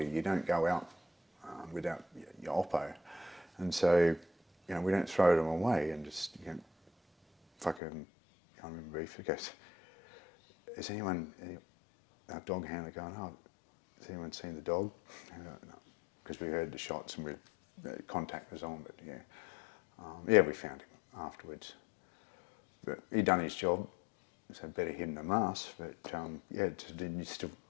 you don't go out without your oppo, and so we don't throw them away and just fucking. I remember he goes, "Has anyone, our dog handler, going? Oh, has anyone seen the dog?" No, because we heard the shots and contact was on. But we found him afterwards. But he'd done his job, so better him than us. But then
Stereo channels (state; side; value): drops out; right; at 7.8 s